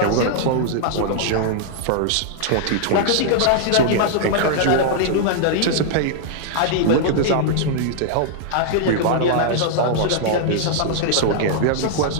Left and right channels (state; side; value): different; both; correlation -0.01